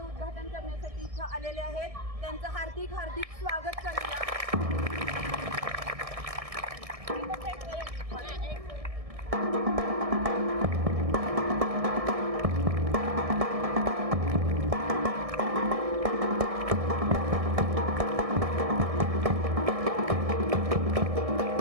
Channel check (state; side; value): late; left; 1.6 ms